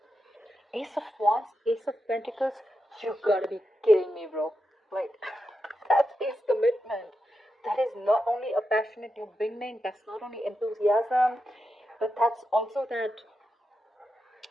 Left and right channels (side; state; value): both; normal; correlation 0.87